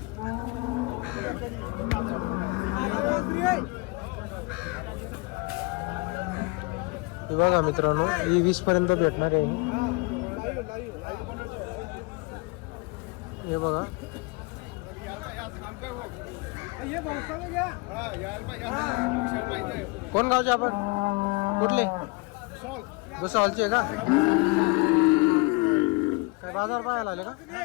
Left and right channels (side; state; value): right; quieter; 27.7 dB